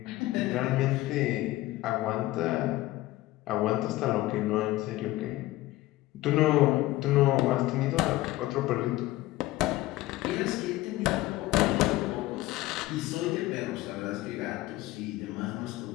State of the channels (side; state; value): right; quieter; 17.4 dB